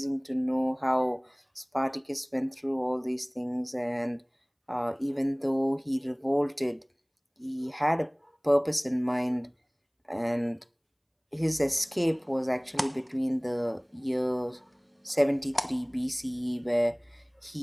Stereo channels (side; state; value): both; identical; correlation 1.00